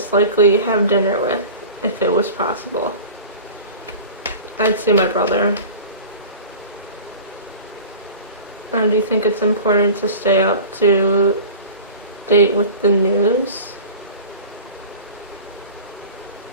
likely have dinner with if it was possible? I'd say my brother. Do you think it's important to stay up to date with the news?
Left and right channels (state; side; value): inverted; both; correlation -0.37